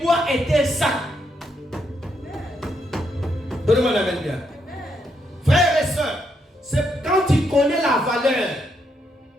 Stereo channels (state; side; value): normal; both; correlation 0.78